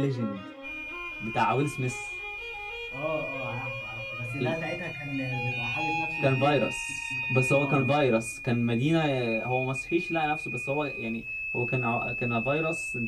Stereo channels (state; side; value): identical; both; correlation 1.00